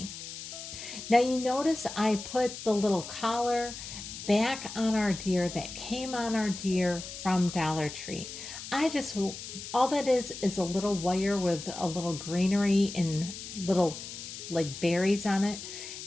Now you notice I put the little collar back on our deer that came on our deer from Dollar Tree. All that is a little wire with a little greenery and little like berries on it.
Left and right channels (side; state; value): left; noise; hiss, 10 dB below the sound